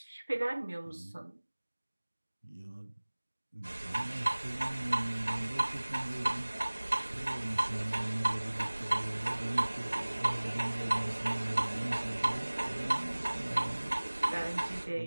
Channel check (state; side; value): inverted; both; correlation -1.00